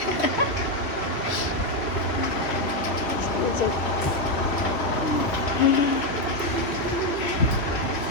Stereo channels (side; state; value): right; late; 3.0 ms